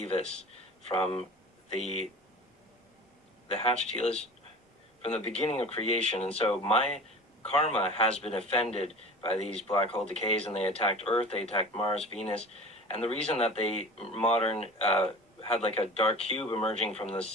from the hatchet from the beginning of creation. And so my karma has been offended by these black hole decays, and they attacked Earth, they attacked Mars, Venus. And the reason that they modern had like a dark cube emerging from the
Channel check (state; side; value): normal; both; correlation 0.38